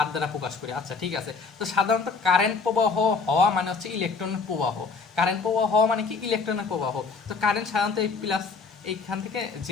দ্বারা প্রকাশ করি। আচ্ছা ঠিক আছে, তো সাধারণত কারেন্ট প্রবাহ হওয়া মানে হচ্ছে ইলেকট্রনের প্রবাহ। কারেন্ট প্রবাহ হওয়া মানে কি? ইলেকট্রনের প্রবাহ। তো কারেন্ট সাধারণত এই প্লাস এইখান থেকে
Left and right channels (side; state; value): right; quieter; 4.7 dB